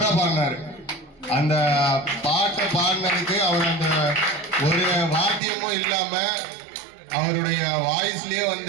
பாடினாரு. அந்த பாட்டை பாடினதுக்கு அவர் அந்த ஒரு வாத்தியமும் இல்லாம அவருடைய வாய்ஸ்லயே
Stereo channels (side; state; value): left; drops out; at 5.4 s